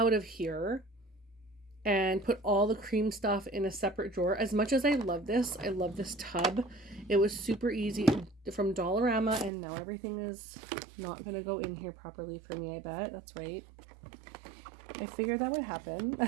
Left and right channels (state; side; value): drops out; left; at 9.5 s